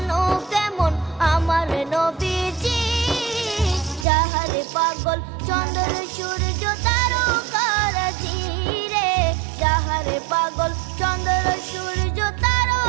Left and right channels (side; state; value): left; drops out; at 4.0 s